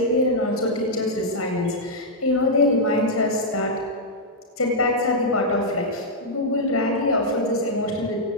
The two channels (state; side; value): normal; both; correlation -0.06